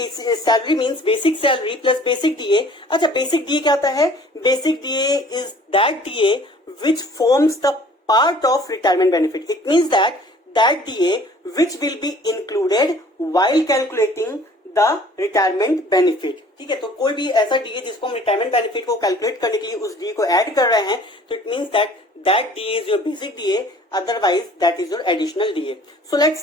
salary means basic salary plus basic DA. अच्छा, बेसिक डीए क्या होता है? Basic DA is that DA which forms the part of retirement benefit. It means that DA which will be included while calculating the retirement benefit. ठीक है, तो कोई भी ऐसा डीए जिसको हम रिटायरमेंट बेनिफिट को कैलकुलेट करने के लिए उस डीए को ऐड कर रहे हैं, तो it means that DA is your basic DA, otherwise that is your additional DA. So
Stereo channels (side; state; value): both; normal; correlation 0.52